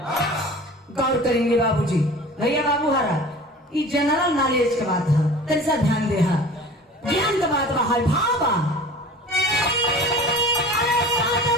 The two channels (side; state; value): both; normal; correlation 0.41